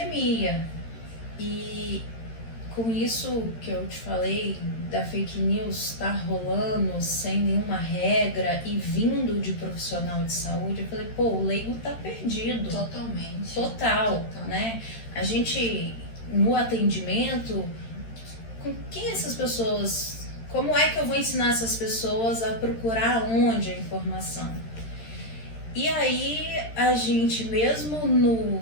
e com isso que eu te falei, da fake news estar rolando sem nenhuma regra e vindo de profissional de saúde, eu falei, o leigo tá perdido. Totalmente. Total, né? A gente, no atendimento, com quem essas pessoas, como é que eu vou ensinar essas pessoas a procurar onde a informação? E aí, a gente, mesmo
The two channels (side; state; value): right; late; 13 ms